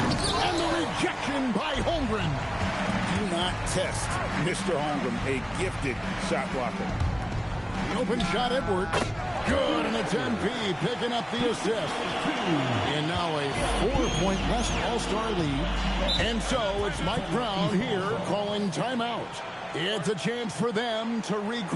the rejection by Holmgren. Do not test Mr. Holmgren, a gifted shot blocker. The open shot, Edwards. Good, and it's MP picking up the assist. And now a 4-point West All-Star lead. And so it's Mike Brown here calling timeout. It's a chance for them to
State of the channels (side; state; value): both; identical; correlation 1.00